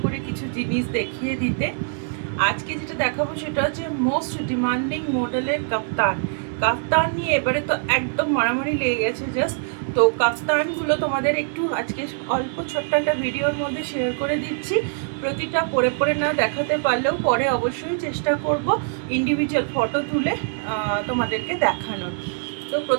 করে কিছু জিনিস দেখিয়ে দিতে। আজকে যেটা দেখাবো সেটা হচ্ছে মোস্ট ডিমান্ডিং মডেলের কাপ্তান। কাপ্তান নিয়ে এবারে তো একদম মারামারি লেগে গেছে জাস্ট। তো কাপ্তানগুলো তোমাদের একটু আজকে অল্প ছোট্ট একটা ভিডিওর মধ্যে শেয়ার করে দিচ্ছি। প্রতিটা পরে পরে না দেখাতে পারলেও পরে অবশ্যই চেষ্টা করব ইন্ডিভিজুয়াল ফটো তুলে তোমাদেরকে দেখানোর। তো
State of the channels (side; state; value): left; silent; 61 dB below the other